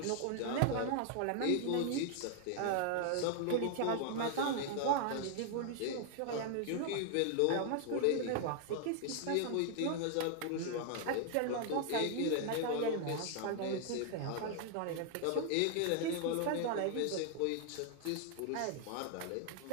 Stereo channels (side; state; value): both; different; correlation 0.00